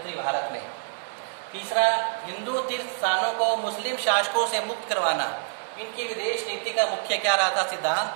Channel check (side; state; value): left; silent; digital silence